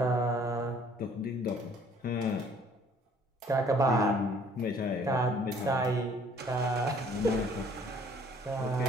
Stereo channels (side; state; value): both; normal; correlation 0.58